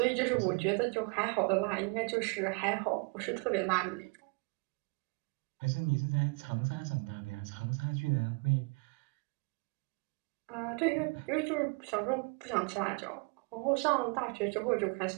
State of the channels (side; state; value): left; quieter; 31.9 dB